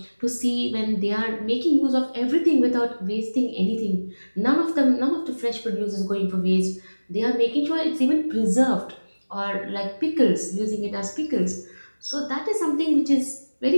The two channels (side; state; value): both; inverted; correlation -1.00